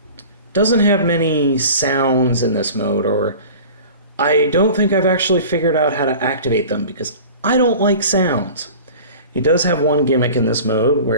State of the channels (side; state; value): both; inverted; correlation -0.40